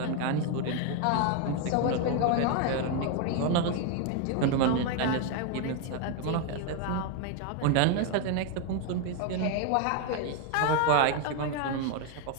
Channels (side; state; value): both; different; correlation 0.01